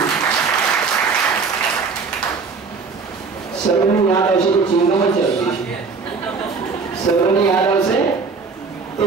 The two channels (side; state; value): left; quieter; 4.8 dB